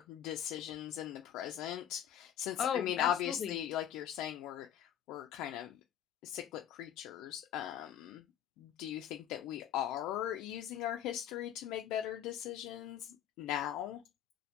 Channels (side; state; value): right; quieter; 10.3 dB